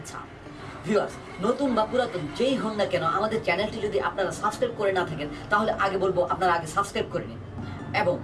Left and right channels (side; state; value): both; identical; correlation 1.00